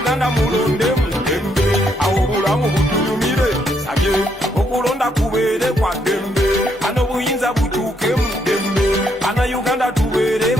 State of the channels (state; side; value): normal; both; correlation 0.74